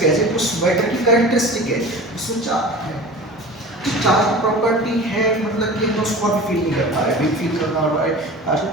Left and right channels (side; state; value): both; normal; correlation 0.37